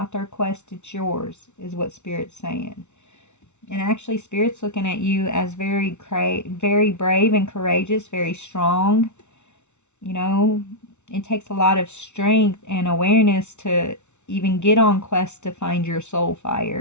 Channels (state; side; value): late; right; 0.82 ms